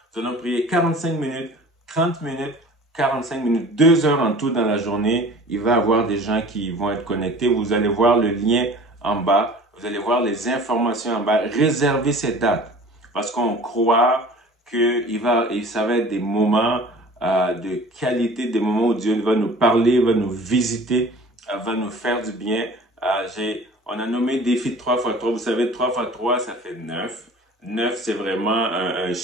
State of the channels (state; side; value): normal; both; correlation 0.44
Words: Nous allons prier 45 minutes, 30 minutes, 45 minutes, 2 heures en tout dans la journée. Il va y avoir des gens qui vont être connectés. Vous allez voir le lien en bas. Vous allez voir les informations en bas. Réservez ces dates parce qu'on croit que ça va être des moments de qualité, des moments où Dieu va nous parler, va nous visiter, va nous faire du bien. On a nommé défi 3x3. Vous savez, 3x3, ça fait 9. 9, c'est vraiment un